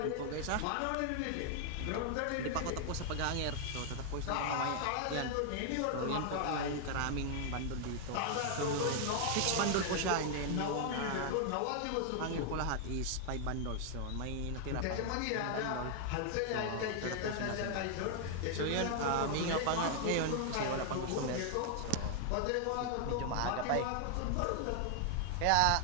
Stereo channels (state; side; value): different; both; correlation 0.00